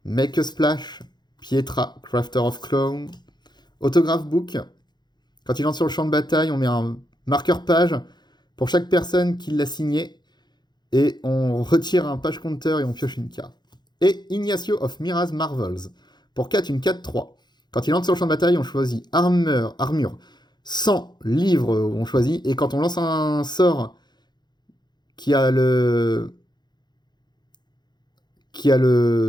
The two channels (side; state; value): right; late; 0.21 ms